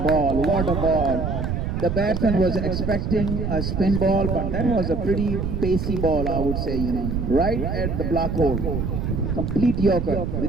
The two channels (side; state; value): right; noise; rumble, 2 dB below the sound